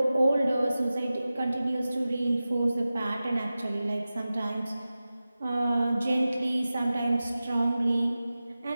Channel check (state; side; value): inverted; both; correlation -0.95